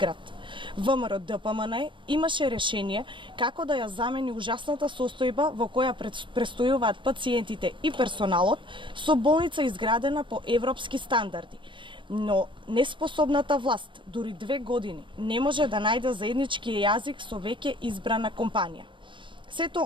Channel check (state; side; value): late; left; 0.24 ms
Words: ВМРО ДПМН имаше решение како да ја замени ужасната состојба во која престојуваат пациентите и персоналот со болница изградена по европски стандарди. Но неспособната власт дури 2 години не може да најде заеднички јазик со веќе избрана компанија.